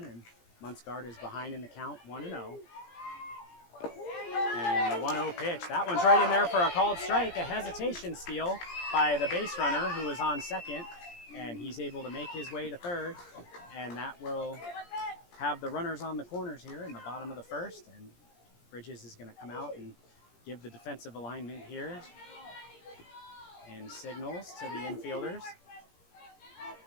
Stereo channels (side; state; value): right; late; 17 ms